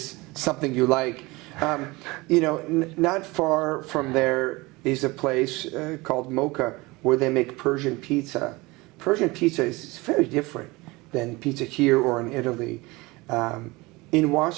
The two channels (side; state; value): left; quieter; 22.9 dB